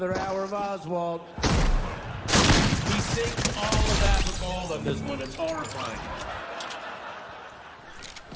hour of Oswald. He sings all of Abigail on this one. It's horrifying.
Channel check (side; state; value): both; identical; correlation 1.00